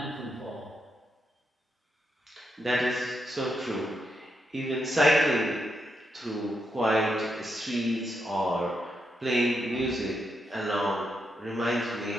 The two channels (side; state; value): both; normal; correlation 0.83